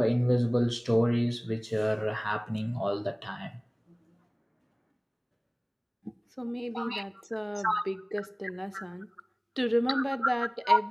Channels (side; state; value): both; identical; correlation 1.00